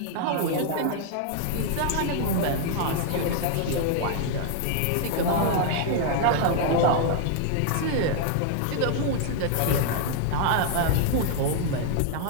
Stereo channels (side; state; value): both; different; correlation 0.00